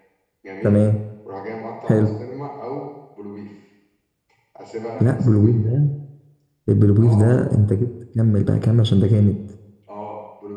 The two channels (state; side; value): identical; both; correlation 1.00